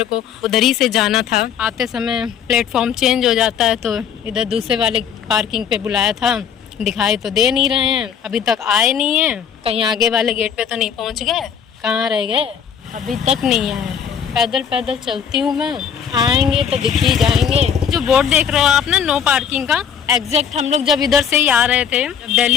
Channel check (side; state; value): right; quieter; 7.9 dB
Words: को उधर ही से जाना था। आते समय प्लेटफॉर्म चेंज हो जाता है, तो इधर दूसरे वाले पार्किंग पे बुलाया था। दिखाई तो दे नहीं रहे हैं, अभी तक आए नहीं हैं। कहीं आगे वाले गेट पे तो नहीं पहुंच गए, कहाँ रह गए, अभी तक नहीं आए। पैदल पैदल चलती हूँ मैं, आएंगे तो दिख ही जाएंगे। जो बोर्ड देख रहे हो आप ना, नो पार्किंग का, एग्जैक्ट हम लोग जब इधर से ही आ रहे थे, जब